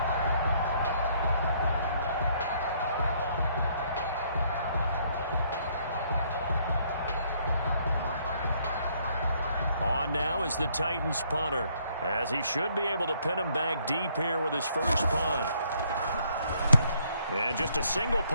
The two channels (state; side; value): inverted; both; correlation -0.67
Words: Now is the Titans punter, as he should be able to pin him back deep here with his first punt. And just a single